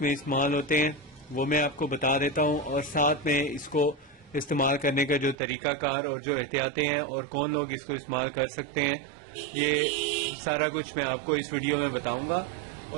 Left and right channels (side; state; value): left; drops out; at 5.4 s